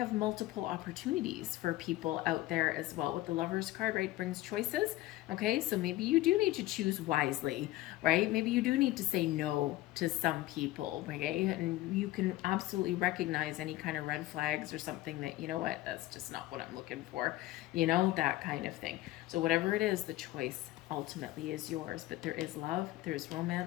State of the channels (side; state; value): right; quieter; 16.9 dB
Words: multiple opportunities for people out there as well. With the Lovers card, right, brings choices. Okay, so maybe you do need to choose wisely, right? Maybe you do need to say no to some people, okay? And you can absolutely recognize any kind of red flags or something that, you know what, that's just not what I'm looking for, you know, that kind of thing. So whatever it is, the choice ultimately is yours. But there is love, there's